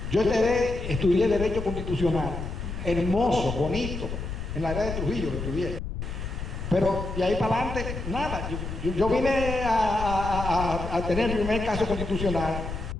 Yo estudié Derecho Constitucional, hermoso, bonito, en la era de Trujillo lo estudié. Pero de ahí para adelante, nada. Yo vine a tener el primer caso constitucional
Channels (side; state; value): left; noise; rumble, 6 dB below the sound